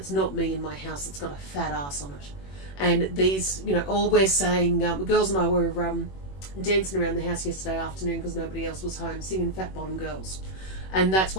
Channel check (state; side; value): late; right; 21 ms